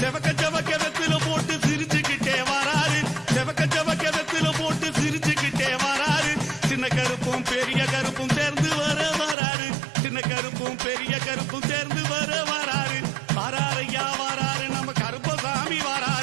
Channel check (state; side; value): drops out; left; at 9.3 s